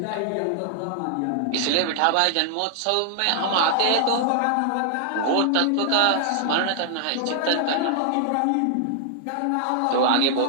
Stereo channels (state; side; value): different; both; correlation 0.00